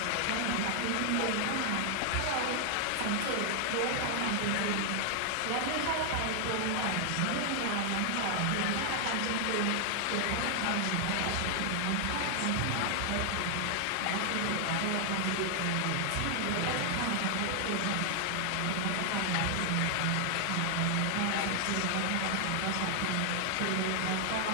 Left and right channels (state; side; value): different; both; correlation 0.00